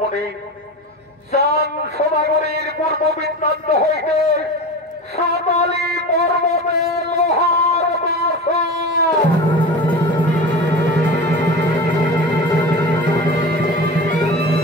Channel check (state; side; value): normal; both; correlation 0.30